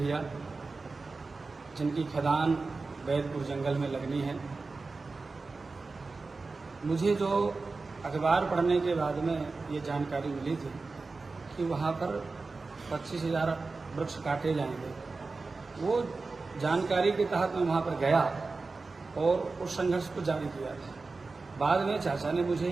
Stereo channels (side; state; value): left; quieter; 3.9 dB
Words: जिनकी खदान बैदपुर जंगल में लगनी है, मुझे जो अखबार पढ़ने के बाद में ये जानकारी मिली थी कि वहाँ पर 25,000 वृक्ष काटे जाएंगे। वो जानकारी के तहत मैं वहाँ पर गया और उस संघर्ष को जारी किया था। बाद में चाचा ने मुझे